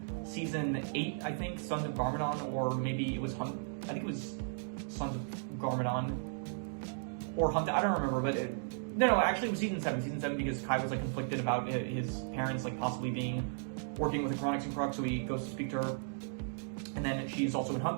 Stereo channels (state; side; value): silent; left; digital silence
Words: season 8, I think, Sons of Garmadon, or maybe it was I think it was Sons of Garmadon or Hunt. I don't remember, but No, actually it was season 7, because Kai was like conflicted about his parents like possibly working with the Chronix and Crux, so he goes to speak to her. And then she's also in